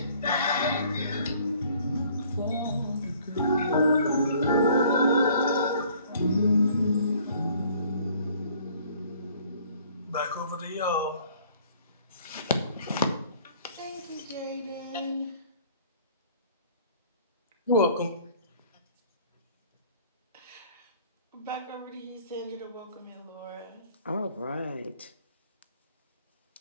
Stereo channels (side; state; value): both; inverted; correlation -0.56